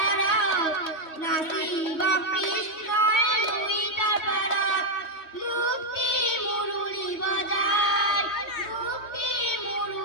নাসিব কৃষ্ণায় লুইটার পারাত, মুক্তি মুরুলি বাজায়, মুক্তি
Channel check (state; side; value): late; right; 3.1 ms